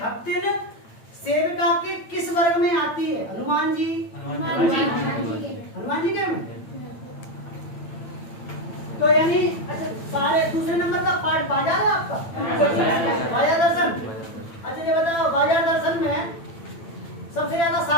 भक्तिन सेविका के किस वर्ग में आती है? हनुमान जी। हनुमान जी के में? तो यानी अच्छा सारे दूसरे नंबर का पाठ बाजार है आपका, बाजार दर्शन। अच्छा ये बताओ, बाजार दर्शन में सबसे ज्यादा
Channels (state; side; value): late; right; 8.9 ms